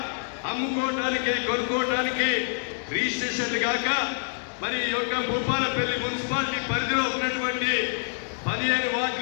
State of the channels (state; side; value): silent; right; digital silence